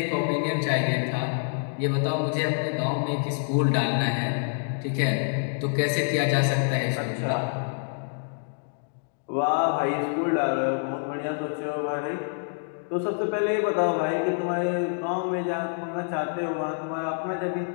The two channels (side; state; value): right; silent; digital silence